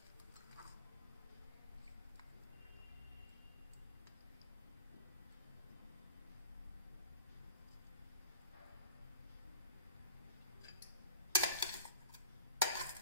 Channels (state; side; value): inverted; both; correlation -0.40